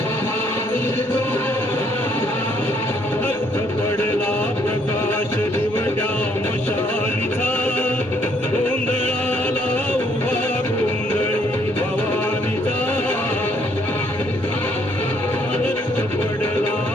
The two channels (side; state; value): both; normal; correlation 0.67